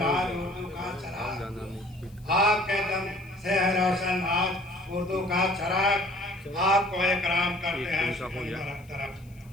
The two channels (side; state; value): left; noise; hiss, 29 dB below the sound